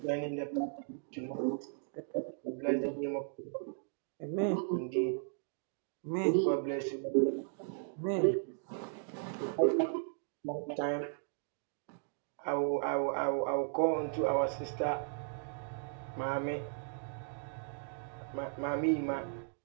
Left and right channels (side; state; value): left; silent; digital silence